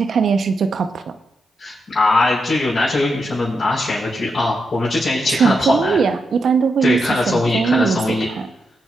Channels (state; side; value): normal; both; correlation 0.84